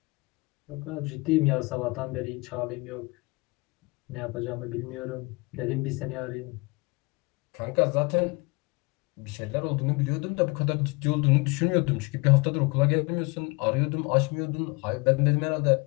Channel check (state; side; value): quieter; right; 26.7 dB